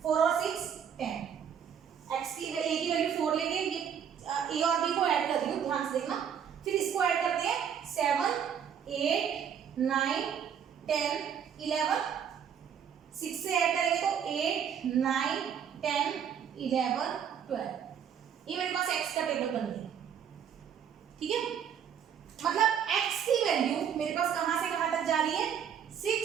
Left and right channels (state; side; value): quieter; left; 8.2 dB